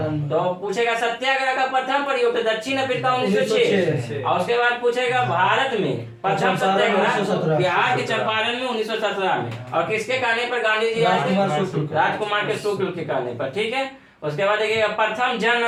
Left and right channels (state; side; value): identical; both; correlation 1.00